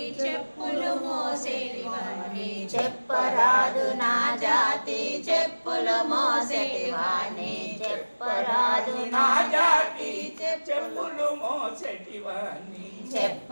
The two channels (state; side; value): inverted; both; correlation -1.00